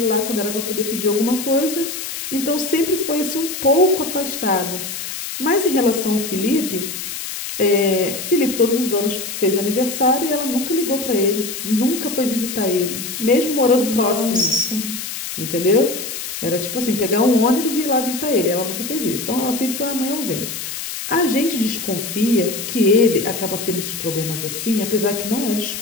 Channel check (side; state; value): left; noise; hiss, 6 dB below the sound